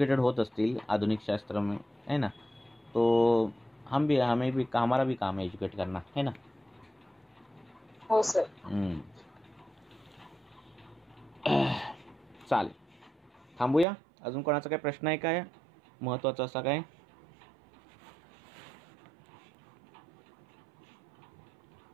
होत असतील आधुनिक शास्त्र में है ना तो हमारा भी काम है एजुकेट करना है ना. हो सर. चालेल थांबूया. अजून कोणाचा काय प्रश्न आहे काय महत्वाचा असा काय.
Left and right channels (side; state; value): left; drops out; at 13.9 s